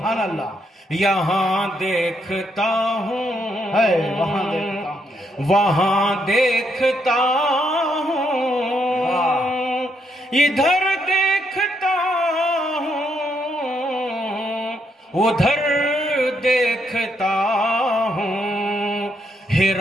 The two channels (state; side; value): normal; both; correlation 0.76